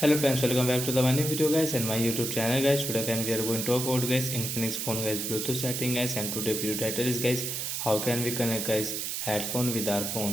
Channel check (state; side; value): noise; right; hiss, 3 dB below the sound